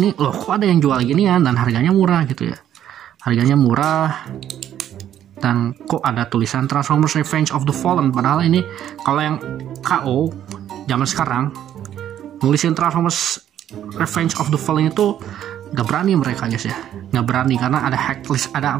loh kok ada yang jual gini ya, dan harganya murah gitu ya. Harganya murah. Dan kok ada tulisan Transformers Revenge of the Fallen, padahal ini kalau yang KO zaman sekarang nulisin Transformers Revenge of the Fallen itu nggak berani mereka guys ya, nggak berani karena ada hak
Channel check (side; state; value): left; quieter; 10.8 dB